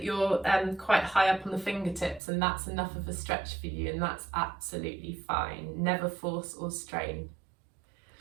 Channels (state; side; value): drops out; left; at 2.2 s